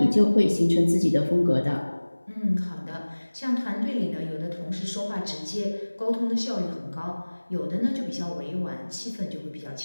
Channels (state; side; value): inverted; both; correlation -1.00